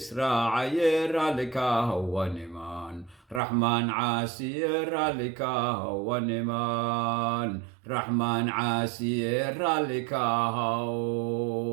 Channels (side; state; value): left; drops out; at 3.4 s